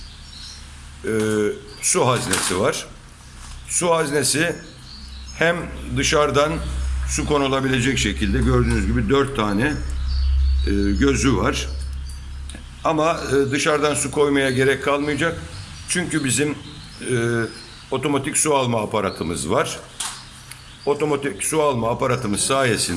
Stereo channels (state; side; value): identical; both; correlation 1.00